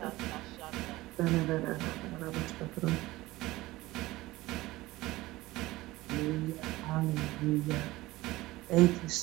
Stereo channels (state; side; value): quieter; left; 18.6 dB